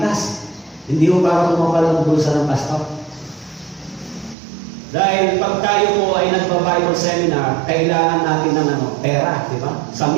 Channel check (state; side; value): drops out; left; at 4.4 s